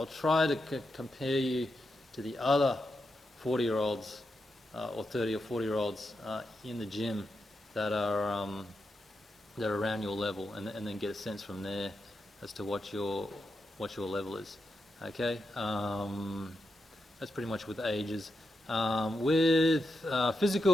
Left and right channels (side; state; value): both; normal; correlation 0.86